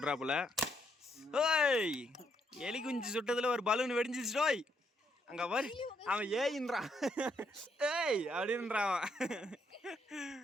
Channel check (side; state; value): both; normal; correlation 0.74